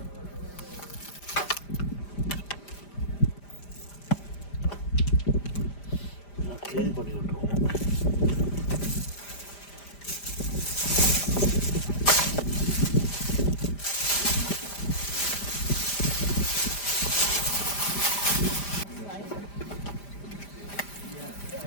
க்ளீன் பண்ணி விட்ருவோம்.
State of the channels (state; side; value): late; right; 5.0 ms